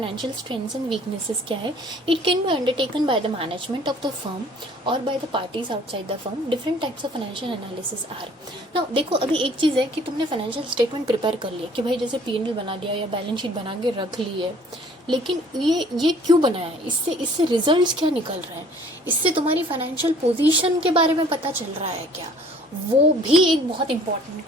स्ट्रेंथ्स एंड वीकनेसेस क्या है. It can be undertaken by the management of the firm और by the parties outside the firm. Different types of financial analysis are. Now देखो, अभी एक चीज़ है कि तुमने फाइनेंशियल स्टेटमेंट प्रिपेयर कर लिया कि भाई जैसे P&L बना दिया या बैलेंस शीट बना के रख ली है, लेकिन ये क्यों बनाया है? इससे रिजल्ट्स क्या निकल रहे हैं? इससे तुम्हारी फाइनेंशियल पोजीशन के बारे में पता चल रहा है क्या? वो भी एक बहुत इंपॉर्टेंट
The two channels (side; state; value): both; normal; correlation 0.54